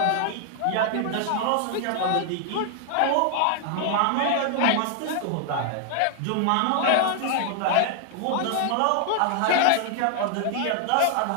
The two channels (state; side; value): different; both; correlation 0.00